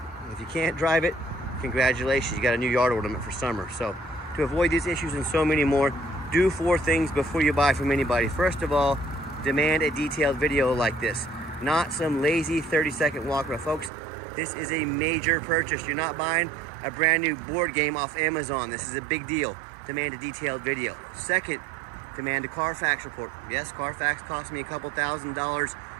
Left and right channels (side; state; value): left; drops out; at 13.9 s